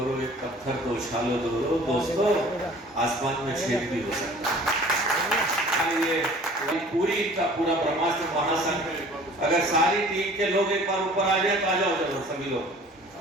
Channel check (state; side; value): normal; both; correlation 0.48